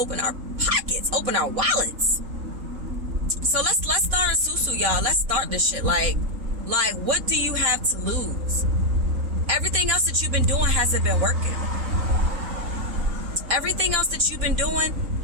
our pockets, open our wallets. So let's start a SOU-SOUS, y'all. Let's start this shit. Like, what do you have to lose? Everything else that you've been doing hasn't been working. Everything else that you've been doing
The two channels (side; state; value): left; late; 4.2 ms